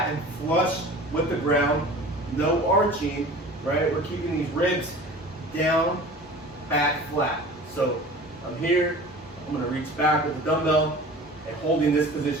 and flush with the ground, no arching. Right. We're keeping these ribs down, back flat. So I'm here. I'm gonna reach back with the dumbbell and holding this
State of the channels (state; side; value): normal; both; correlation 0.41